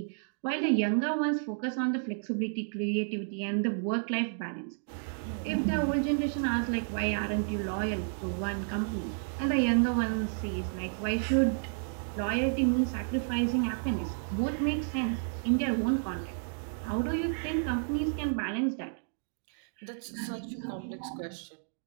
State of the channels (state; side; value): silent; left; digital silence